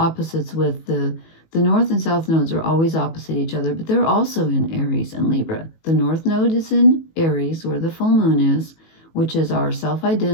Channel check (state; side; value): late; right; 18 ms